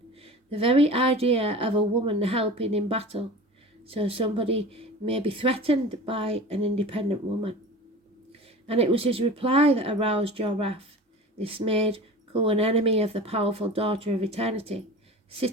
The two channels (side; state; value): both; normal; correlation 0.36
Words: The very idea of a woman helping in battle, so somebody may be threatened by an independent woman. And it was his reply that aroused your wrath. This made Cu an enemy of the powerful daughter of eternity.